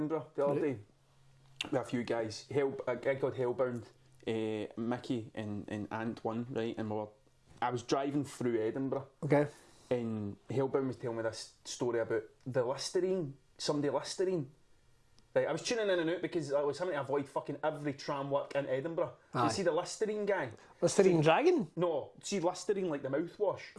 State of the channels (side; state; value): both; identical; correlation 1.00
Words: the other day with a few guys. A guy called Hellbound, Mickey and Ant one, right? And I was driving through Edinburgh. Okay. And Hellbound was telling me this story about the Listerine, somebody Listerine. Right, I was tuning in and out because I was having to avoid fucking every tram work in Edinburgh. You see the Listerine guy? Listerine dragon? No, see Listerine like the mouthwash.